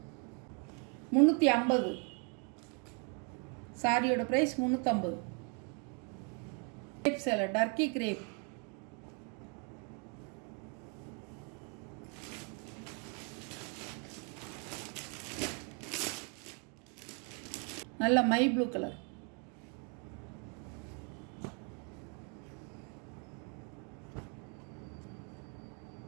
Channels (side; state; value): left; quieter; 37.7 dB